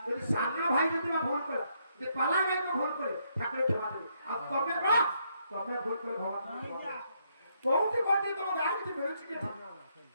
যদি সামনে ভাই যদি ভুল করে যদি পালা গায়ক ভুল করে ঠাকুরের ক্ষমা দেবে আর কবে ভুল করে ভগবান বহুত কোটি তোমার গান কি বেরোচ্ছে কি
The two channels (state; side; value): inverted; both; correlation -0.75